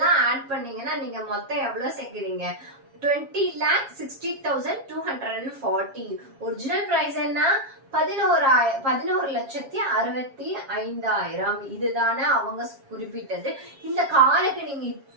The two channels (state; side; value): late; left; 7.4 ms